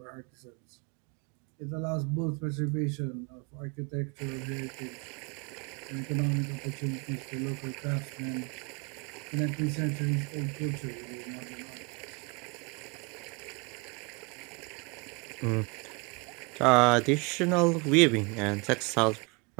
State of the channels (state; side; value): quieter; left; 28.9 dB